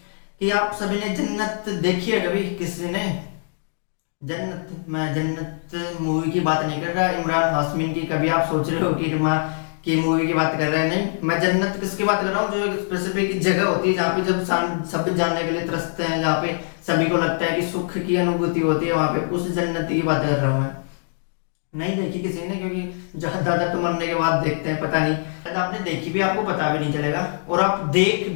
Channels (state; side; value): silent; right; digital silence